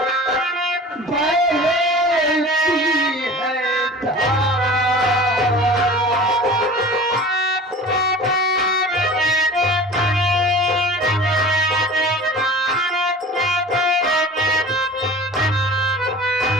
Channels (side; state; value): both; normal; correlation 0.39